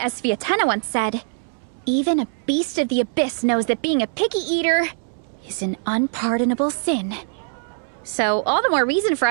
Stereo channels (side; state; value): left; silent; 64 dB below the other